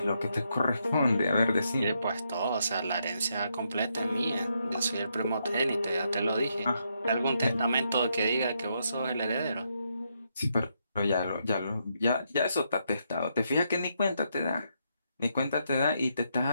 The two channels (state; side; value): inverted; both; correlation -0.78